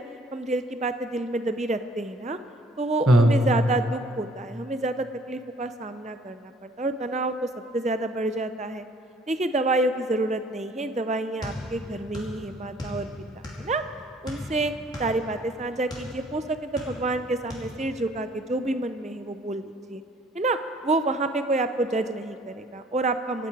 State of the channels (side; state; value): both; normal; correlation 0.58